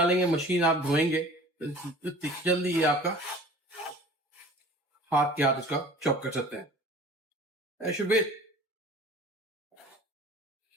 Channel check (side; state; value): both; normal; correlation 0.45